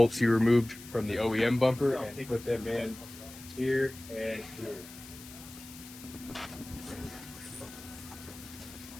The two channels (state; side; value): noise; left; hiss, 17 dB below the sound